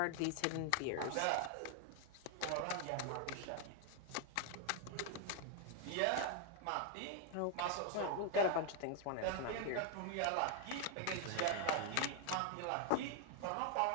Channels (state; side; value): different; both; correlation 0.00